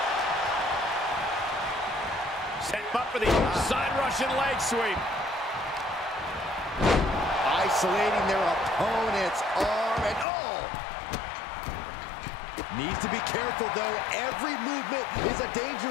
Set him up for the side Russian leg sweep. Isolating their opponent's arm and Needs to be careful, though. Every movement is a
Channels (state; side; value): drops out; right; at 10.2 s